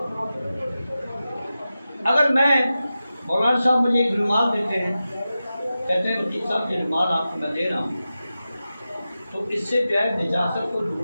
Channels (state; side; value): inverted; both; correlation -0.93